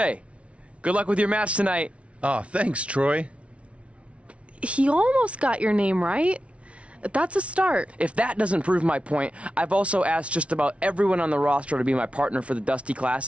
Good luck with your match tonight. Aw, thanks, Troy. He almost got your name right. That's a start. If that doesn't prove my point, I've also asked just about everyone on the roster to be my partner for the Dusty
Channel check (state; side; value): late; left; 0.062 ms